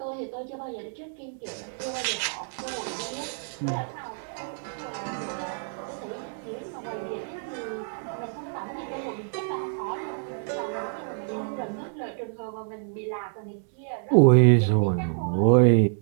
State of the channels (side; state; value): left; silent; 60 dB below the other